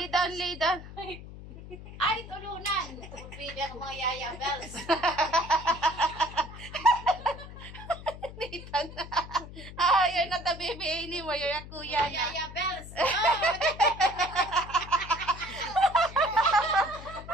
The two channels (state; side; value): noise; left; hum, 14 dB below the sound